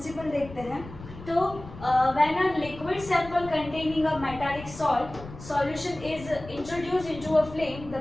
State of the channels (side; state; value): left; noise; rumble, 15 dB below the sound